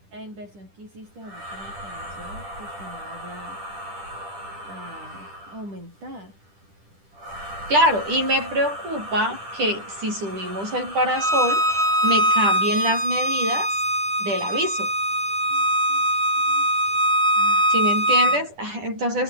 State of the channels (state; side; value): late; left; 10 ms